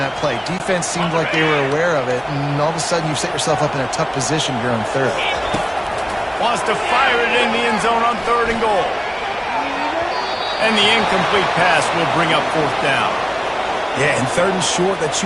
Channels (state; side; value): identical; both; correlation 1.00